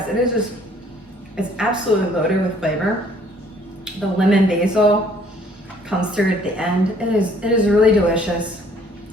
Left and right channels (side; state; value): both; normal; correlation 0.60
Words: It is just, it's absolutely loaded with flavor. The lemon basil comes through at the end. It is really delicious.